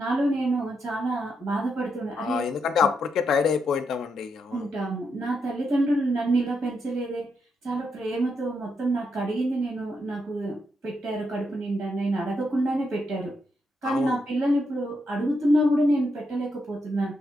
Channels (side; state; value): both; normal; correlation 0.81